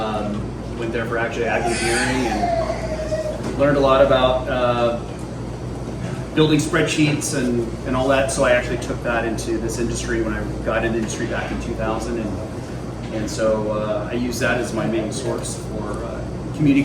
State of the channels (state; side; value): identical; both; correlation 1.00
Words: Went there for actually ag engineering and learned a lot about building spreadsheets and all that. So I actually took that into this industry when I got into the industry back in 2000. And so I use that as my main source for